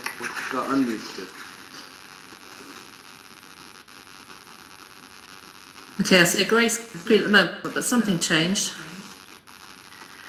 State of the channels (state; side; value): identical; both; correlation 1.00